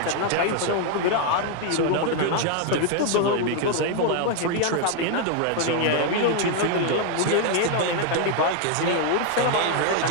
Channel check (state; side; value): different; both; correlation 0.00